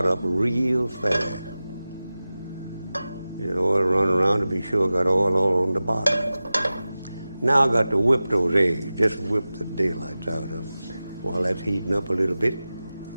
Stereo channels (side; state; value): both; inverted; correlation -0.96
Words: up real fast. Let oil run around to be sure I got oil all on the bottom. Now I got to whip those eggs. Just whip the daylights out of them. While that's heating up a little bit,